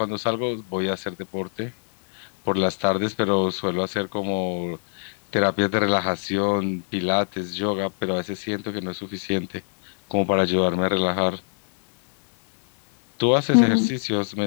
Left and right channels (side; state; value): right; silent; 63 dB below the other